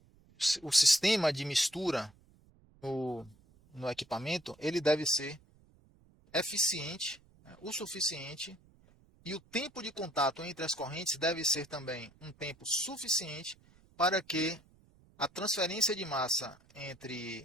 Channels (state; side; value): noise; right; rumble, 29 dB below the sound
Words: o sistema de mistura no, no equipamento ele deve ser eficiente, né, o suficiente, e o tempo de contato entre as correntes deve ser também um tempo suficiente para que a transferência de massa